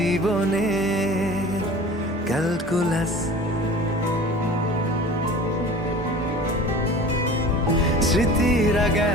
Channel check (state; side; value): normal; both; correlation 0.40